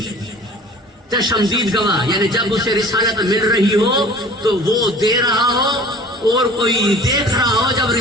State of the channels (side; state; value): both; normal; correlation 0.45